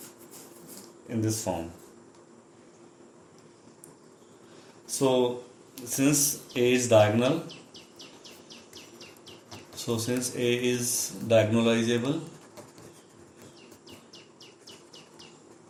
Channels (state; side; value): identical; both; correlation 1.00